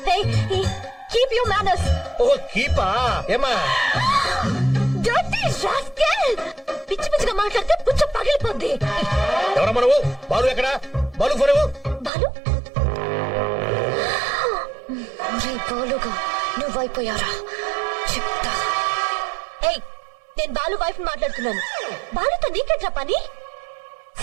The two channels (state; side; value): drops out; left; at 12.1 s